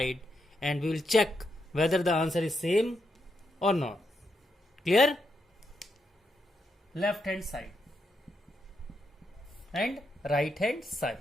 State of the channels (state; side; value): normal; both; correlation 0.82